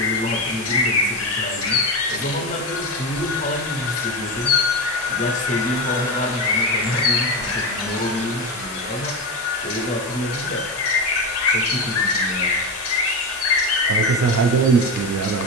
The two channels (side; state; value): both; normal; correlation 0.18